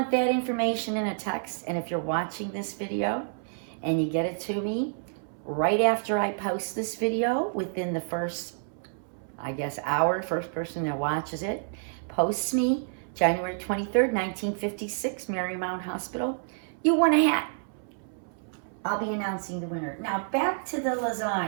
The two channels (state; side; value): silent; left; 59 dB below the other